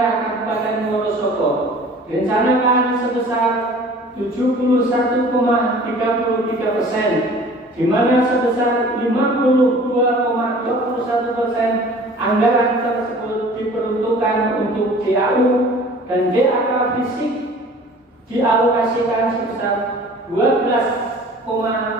Kabupaten Wonosobo, direncanakan sebesar 71,33%, di mana sebesar 52,21% anggaran tersebut diperuntukkan untuk DAU dan DAK fisik dialokasikan sebesar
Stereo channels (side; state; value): both; normal; correlation 0.47